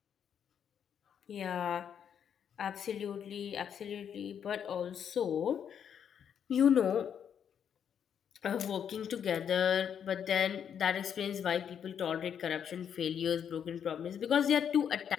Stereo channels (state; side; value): quieter; right; 8.3 dB